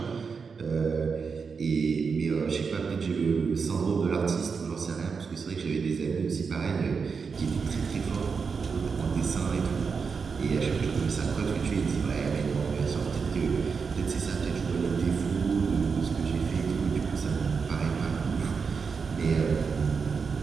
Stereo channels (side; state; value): left; quieter; 5.5 dB